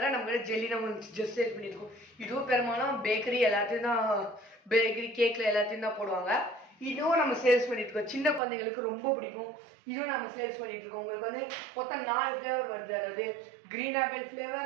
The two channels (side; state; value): left; drops out; at 8.4 s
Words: நம்ம ஜெல்லி நம்ம ஜஸ்ட் சேல் பண்ணியிருக்கோம். இதுவும் பெரும்பாலும் பேக்கரி எல்லாத்தையும் தான், பேக்கரி கேக்கில் எல்லாத்தையும் தான் போடுவாங்க. இதுவும் நம்ம சேல்ஸ் பண்ணிட்டு இருக்கோம். சின்ன குழந்தைங்களுக்கு ரொம்ப பிடிக்கும். இதுவும் நம்ம சேல்ஸ் பண்ணிட்டு இருக்கோம். உங்களுக்கு வந்து மொத்தம் 4 ஃப்ளேவர் வருது. அதாவது green apple